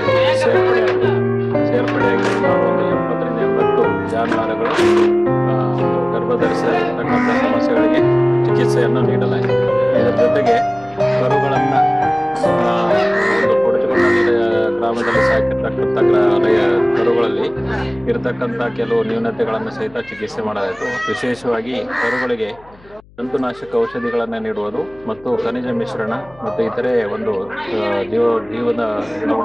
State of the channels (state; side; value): noise; left; hum, 27 dB below the sound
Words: ಸೇರ್ಪಡೆಯಾಗಿ ಸುಮಾರು ಒಂದು 70ರಿಂದ 80 ಜಾನುವಾರುಗಳು ಗರ್ಭಧರಿಸತಕ್ಕಂಥ ಸಮಸ್ಯೆಗಳಿಗೆ ಚಿಕಿತ್ಸೆಯನ್ನು ನೀಡಲಾಗಿದೆ. ಇದರ ಜೊತೆಗೆ ಕರುಗಳನ್ನು ಒಂದು ಕೊಡಚಗೊಂಡಳ್ಳಿ ಗ್ರಾಮದಲ್ಲಿ ಸಾಕಿರ್ತಕ್ಕಂಥ ಕರುಗಳಲ್ಲಿ ಇರತಕ್ಕಂಥ ಕೆಲವು ನ್ಯೂನತೆಗಳನ್ನು ಸಹಿತ ಚಿಕಿತ್ಸೆ ಮಾಡಲಾಯಿತು. ವಿಶೇಷವಾಗಿ ಕರುಗಳಿಗೆ ಜಂತುನಾಶಕ ಔಷಧಿಗಳನ್ನು ನೀಡುವುದು ಮತ್ತು ಖನಿಜ ಮಿಶ್ರಣ ಮತ್ತು ಇತರೆ ಒಂದು ಜೀವದ